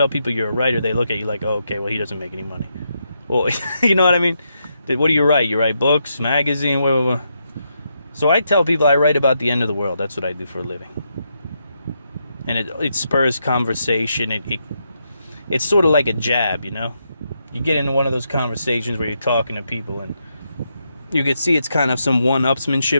people you're a writer, they look at you like, oh, okay, well, he doesn't make any money. Well, you know what I mean? What do you write? You write books, magazine, whatever. So I tell people I write about the end of the world. That's what I do for a living. And it spurs conversation. It's sort of like a jab, you know? You get into one of those conversations where you're talking to people and you can see it's kind of some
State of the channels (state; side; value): inverted; both; correlation -0.81